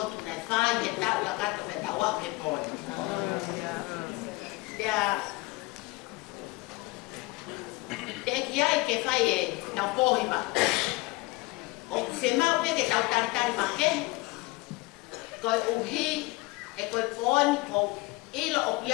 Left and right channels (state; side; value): quieter; right; 23.1 dB